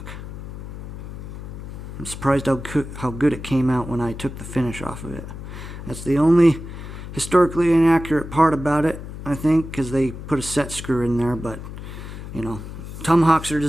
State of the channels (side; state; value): left; noise; hum, 10 dB below the sound